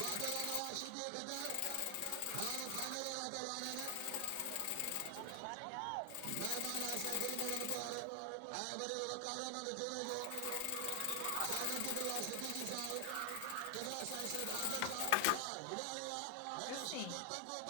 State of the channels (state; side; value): different; both; correlation 0.00